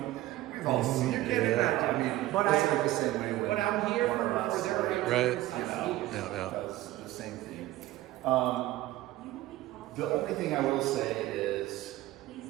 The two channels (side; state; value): left; quieter; 16.0 dB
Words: we've all seen You it. can't imagine. I mean, But it's I- like the same way when But I'm here one of for us, their like, Right. rights. you know, Yeah. does the same thing. The only thing I will say is